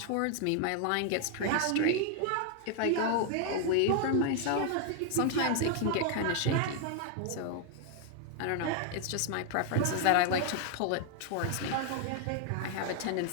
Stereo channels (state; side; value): different; both; correlation 0.00